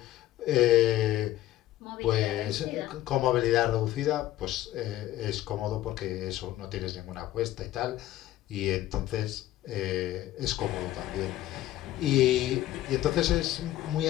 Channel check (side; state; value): right; quieter; 14.5 dB